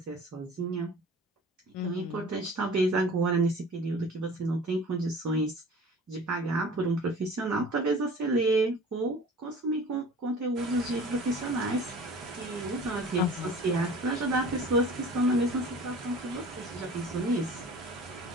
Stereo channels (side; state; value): both; normal; correlation 0.43